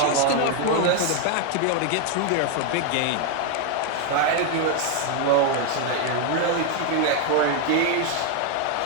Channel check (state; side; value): different; both; correlation 0.01